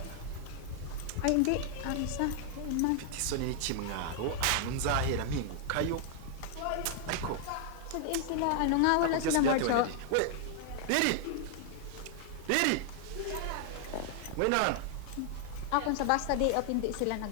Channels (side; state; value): both; different; correlation 0.00